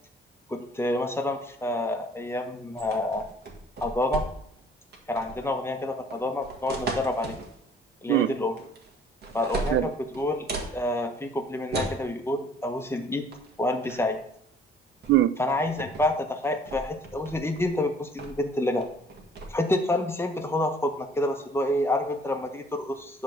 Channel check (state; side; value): normal; both; correlation 0.54